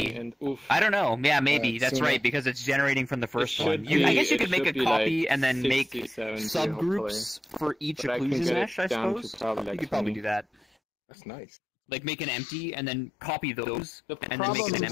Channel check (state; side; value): drops out; right; at 10.7 s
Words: I don't know. Yeah, maybe. That's right, because it's generating from the first one. I guess you could make a copy and then make subgroups for each occlusion mesh, I suppose. You could probably do that. That's nice. Like make an empty and then copy those, and then make problem an is,